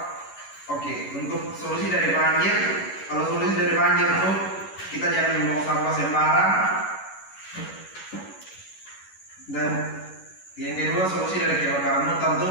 Oke, untuk solusi dari banjir, kalau solusi dari banjir itu kita jangan membuang sampah sembarang. Dan yang kedua, solusi dari kebakaran hutan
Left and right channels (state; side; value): late; right; 11 ms